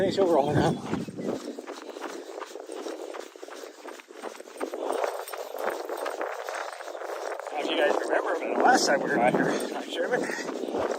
she'll roll around on. Now, if you guys remember, the last time we were out here, I'm Sherman,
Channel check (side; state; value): both; identical; correlation 1.00